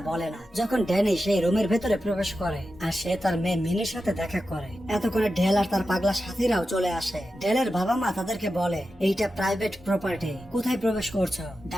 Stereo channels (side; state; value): both; normal; correlation 0.91